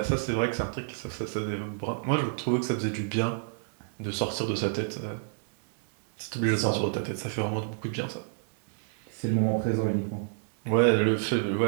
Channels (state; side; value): silent; left; digital silence